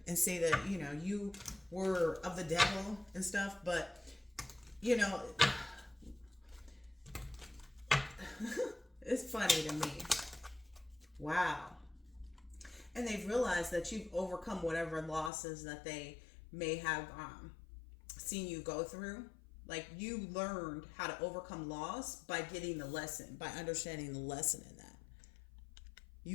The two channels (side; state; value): right; drops out; at 15.3 s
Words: and say that, you were of the devil and stuff, but, it's funny to me. Wow. And they've realized that you've overcome whatever losses that they may have seen you go through. Like, you learned how to overcome loss by getting the lesson, by understanding the lesson in that.